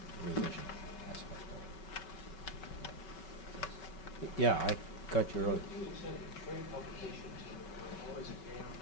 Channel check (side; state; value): right; late; 5.3 ms